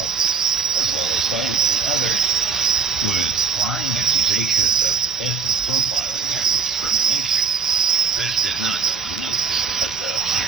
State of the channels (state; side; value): quieter; left; 5.5 dB